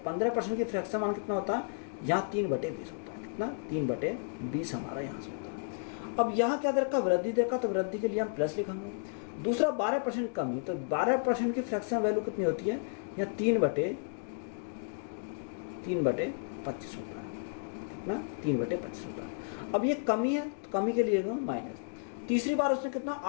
की फ्रैक्शन मान कितना होता है, यहाँ 3/20 होता है। कितना? 3/20 हमारा यहाँ से होता है। अब यहाँ क्या देखा, वृद्धि देखा, तो वृद्धि के लिए हम प्लस लिखेंगे। दूसरा 12% कमी, तो 12% की फ्रैक्शन वैल्यू कितनी होती है, यहाँ 3/25 होता है। कितना? 3/25 होता है। अब ये कमी है, तो कमी के लिए माइनस। तीसरी बार उसने कितना,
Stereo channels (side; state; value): right; silent; digital silence